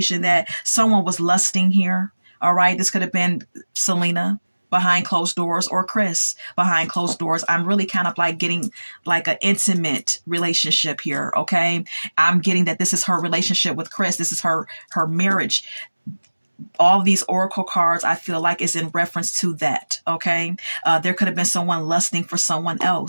that someone was lusting here. All right. This could have been Selena behind closed doors, or Chris behind closed doors. I'm really kind of like getting like an intimate relationship here. Okay. I'm getting that this is her relationship with Chris. This is her marriage. All these oracle cards, I feel like, is in reference to that. Okay. There could have been someone lusting for someone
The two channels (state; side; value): inverted; both; correlation -1.00